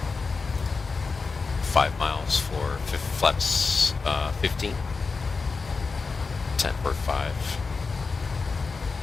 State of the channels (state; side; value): quieter; right; 4.5 dB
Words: 5 miles for flaps 15. 10 for 5.